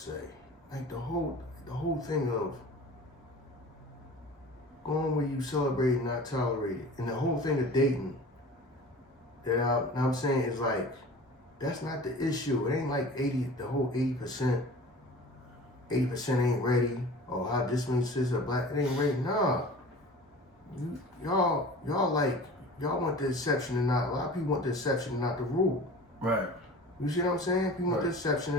Like the whole thing of going where you celebrate and not tolerate it, and the whole thing of dating that I'm saying is like, that's not the issue. It ain't like 80% ain't ready, or how this many sisters are black, it ain't ready. Nah. Y'all want the exception and not, a lot of people want the exception and not the rule. Right. You see what I'm saying? People want the exception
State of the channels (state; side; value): normal; both; correlation 0.40